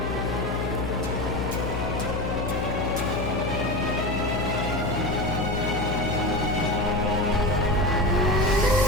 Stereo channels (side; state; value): left; noise; hum, 2 dB below the sound